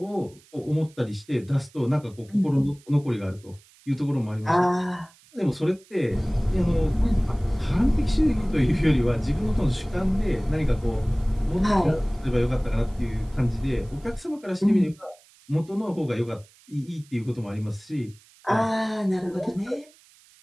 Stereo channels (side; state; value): right; noise; hiss, 28 dB below the sound